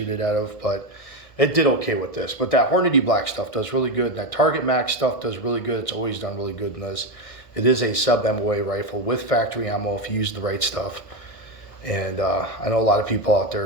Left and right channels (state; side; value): late; right; 1.4 ms